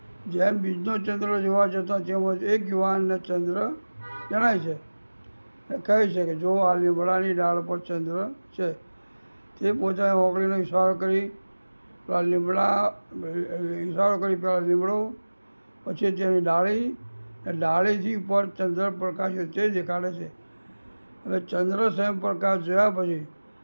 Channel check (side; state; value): both; inverted; correlation -1.00